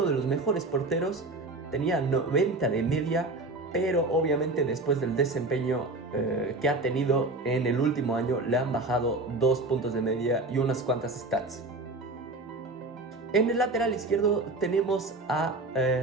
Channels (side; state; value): left; quieter; 3.0 dB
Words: de los mejores porteros, tenía 90 de media, pero obviamente después del desempeño que ha tenido en el último año, le han bajado 2 puntos de media y unas cuantas stats. En el lateral izquierdo tenemos a